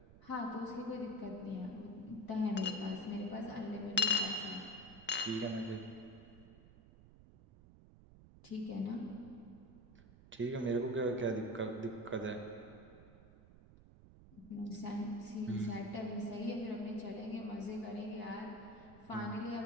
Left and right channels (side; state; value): right; noise; rumble, 20 dB below the sound